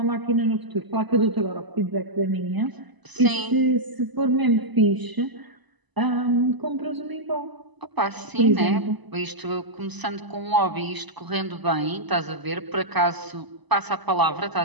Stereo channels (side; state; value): left; late; 1.0 ms